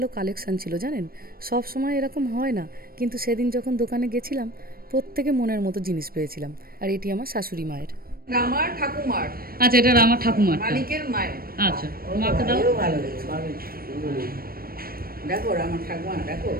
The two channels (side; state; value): left; late; 0.43 ms